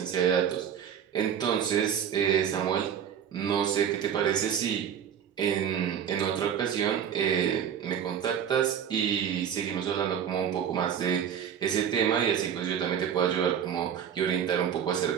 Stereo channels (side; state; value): left; quieter; 8.6 dB